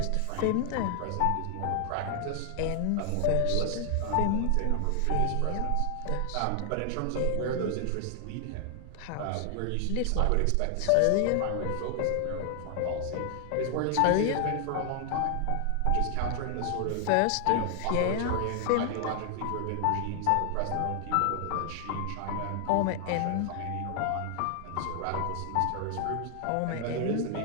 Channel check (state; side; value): different; both; correlation 0.00